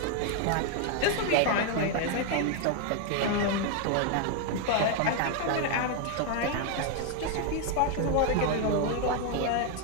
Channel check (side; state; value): both; different; correlation 0.00